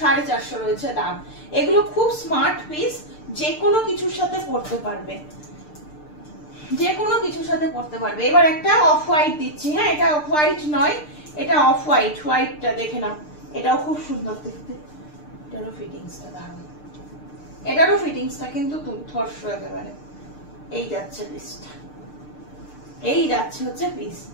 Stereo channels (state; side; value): late; right; 6.7 ms